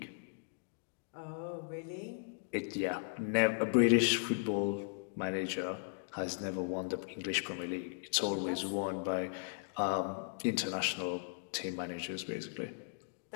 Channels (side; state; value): right; silent; digital silence